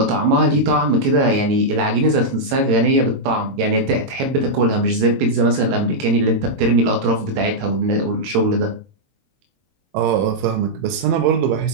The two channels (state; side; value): late; left; 22 ms